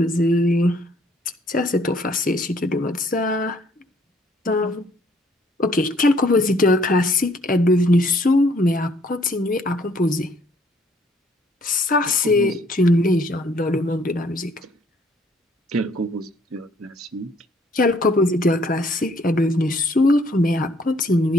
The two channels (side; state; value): both; normal; correlation 0.63